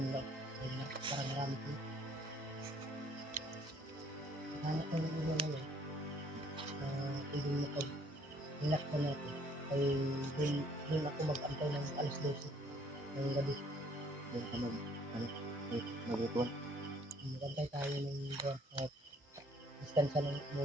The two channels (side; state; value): both; normal; correlation 0.61